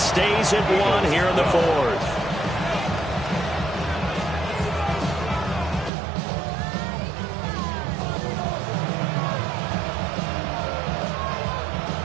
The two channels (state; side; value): drops out; left; at 5.9 s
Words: at 1 here in the 4th.